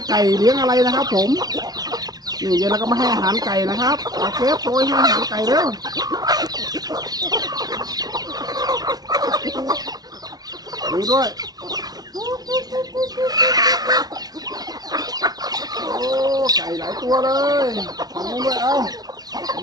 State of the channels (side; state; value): left; late; 0.19 ms